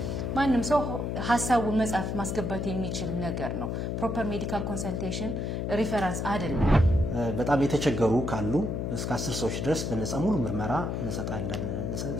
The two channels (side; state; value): left; noise; hum, 2 dB below the sound